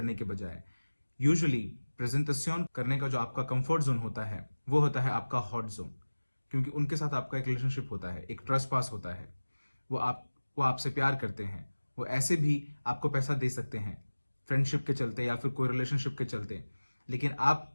के बजाय। यूजुअली प्रेजेंटेशन करने का जो आपका कंफर्ट जोन होता है वो होता है आपका हॉट जोन, क्योंकि उनके साथ आपका एक रिलेशनशिप होता है, एक ट्रस्ट पास होता है। वो आपसे प्यार करते हैं, वो ऐसे भी आपको पैसा दे सकते हैं फ्रेंडशिप के चलते या फिर कोई रिलेशनशिप के चलते, लेकिन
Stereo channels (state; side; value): inverted; both; correlation -1.00